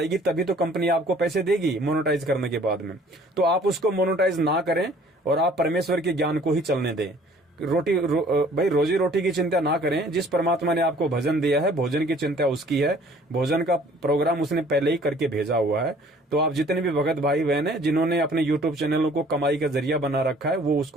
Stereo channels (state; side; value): normal; both; correlation 0.55